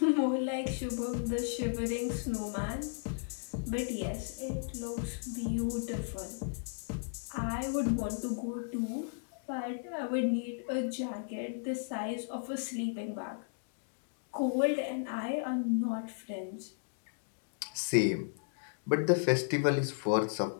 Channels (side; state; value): right; silent; digital silence